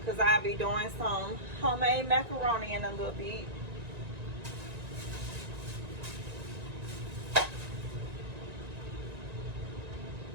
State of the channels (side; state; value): left; late; 1.9 ms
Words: I'll be doing some homemade macaroni in a little bit.